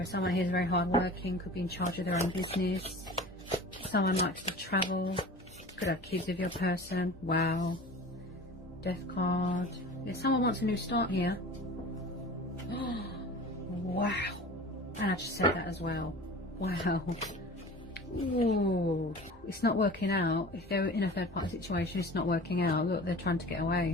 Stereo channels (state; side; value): normal; both; correlation 0.39